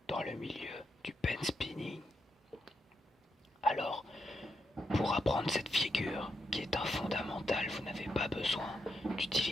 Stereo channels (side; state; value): both; normal; correlation 0.84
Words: dans le milieu du pen spinning. Alors, pour apprendre cette figure, qui est un fondamental, vous n'avez pas besoin